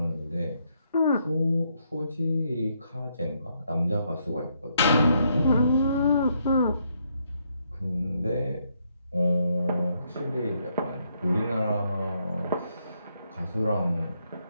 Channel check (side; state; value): both; inverted; correlation -0.75